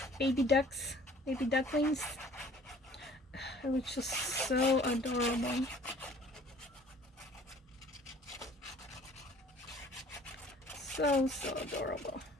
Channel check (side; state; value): both; normal; correlation 0.53